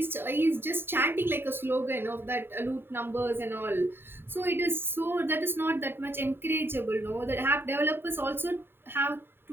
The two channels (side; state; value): left; late; 0.11 ms